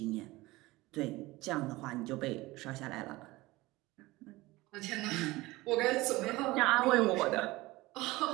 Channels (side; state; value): left; quieter; 20.1 dB